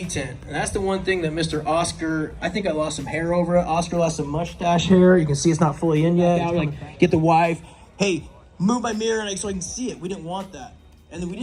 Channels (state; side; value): identical; both; correlation 1.00